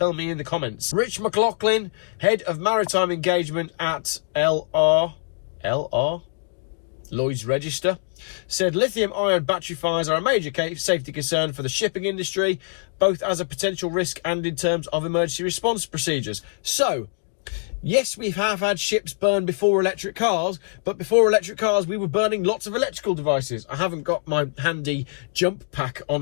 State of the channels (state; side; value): silent; right; digital silence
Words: me in the comments. Rich McLaughlin, head of maritime engagement at Lloyd's Register, said lithium-ion battery fires are a major safety concern for the shipping industry, both as a potential risk and in terms of emergency response procedures. So, yes, we have had ships burn before electric cars, but before electric cars, we were burning lots of electrical devices. I haven't got my handy jump pack